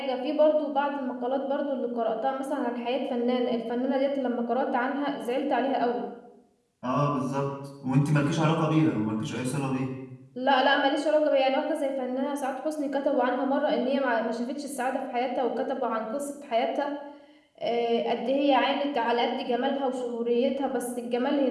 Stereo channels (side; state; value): both; identical; correlation 1.00